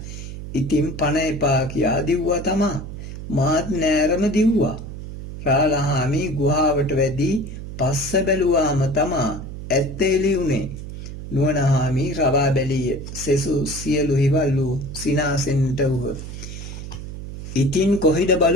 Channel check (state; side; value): noise; right; hum, 10 dB below the sound